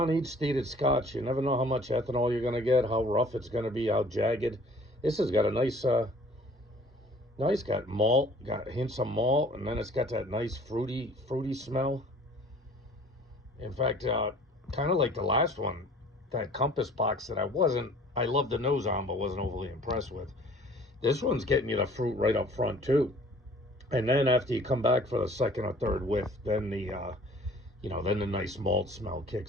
stated scotch, you never know how much ethanol you're going to get, how rough it's going to be, how jagged. This has got a nice, got malt, got hints of malt, and then it's got that nice fruity smell. In fact, kind of like the last one, that Compass box that I loved the nose on, but wasn't overly impressed with. This one's getting you the fruit right up front, too. And then after you come back for the second or third whiff, then then the nice malt smell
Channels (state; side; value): normal; both; correlation 0.51